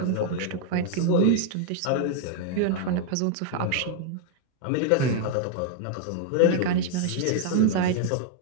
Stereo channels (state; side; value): different; both; correlation 0.00